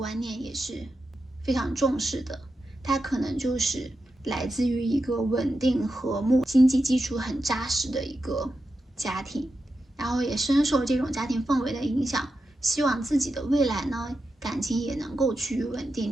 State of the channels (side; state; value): both; normal; correlation 0.89